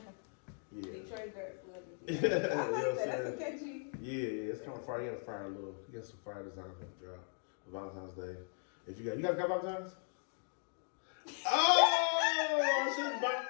Yeah. Detroit Girls Love the D. That's a catchy. Yeah, it's kind of fire. You got some fire design for the drop for Valentine's Day. If you guys got Valentine's? Oh, I shouldn't.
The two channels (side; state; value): right; silent; 52 dB below the other